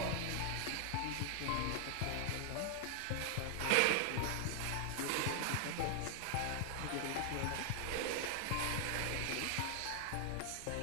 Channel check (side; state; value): both; different; correlation 0.00